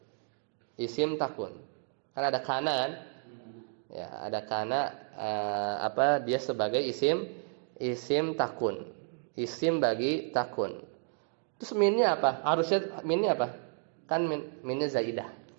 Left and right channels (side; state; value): left; silent; 56 dB below the other